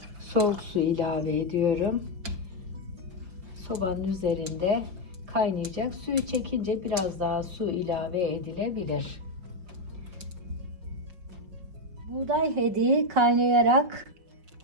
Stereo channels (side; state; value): left; late; 5.3 ms